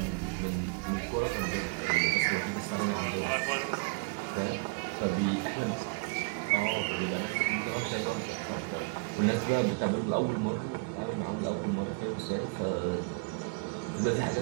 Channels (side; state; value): left; quieter; 31.0 dB